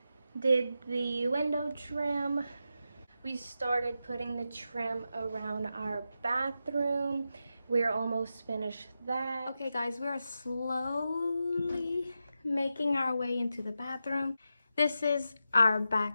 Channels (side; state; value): both; inverted; correlation -0.89